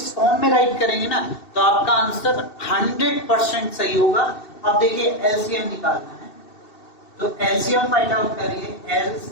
फॉर्म में राइट करेंगे ना तो आपका आंसर 100% सही होगा। अब देखिए एलसीएम निकालना है, तो एलसीएम फाइंड आउट करिए,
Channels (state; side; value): late; right; 2.7 ms